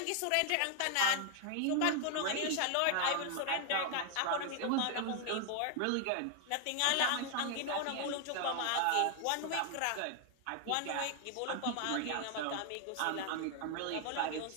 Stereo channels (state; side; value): different; both; correlation 0.00